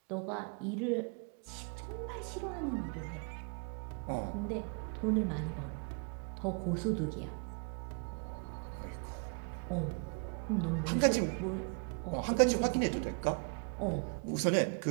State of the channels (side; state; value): left; quieter; 38.7 dB